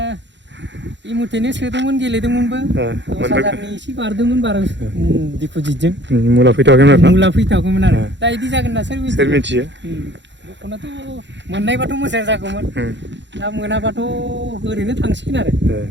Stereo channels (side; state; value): left; late; 0.52 ms